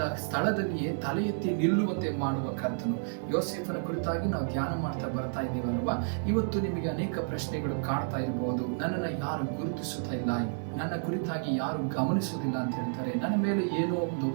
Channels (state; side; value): silent; left; 57 dB below the other